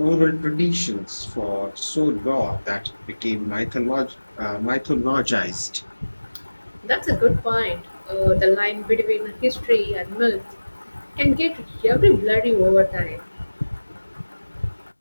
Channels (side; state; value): both; inverted; correlation -1.00